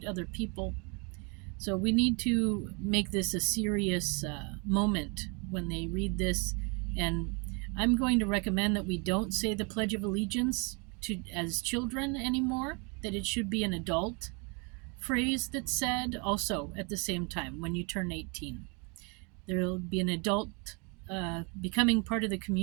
other people. So we need to make this a serious moment when they read this. And I'm going to recommend that we don't say the Pledge of Allegiance as children anymore, that it should be an adult phrase that's said also at the same time when you turn 18. There'll be an adult becoming part of the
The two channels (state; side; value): quieter; left; 32.9 dB